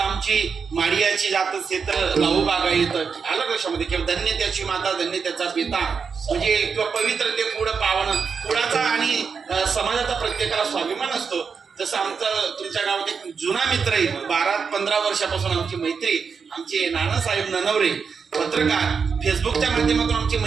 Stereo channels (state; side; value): quieter; left; 5.8 dB